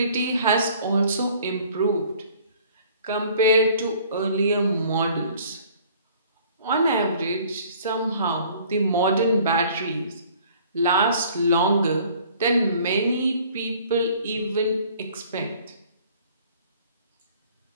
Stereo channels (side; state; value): both; inverted; correlation -0.54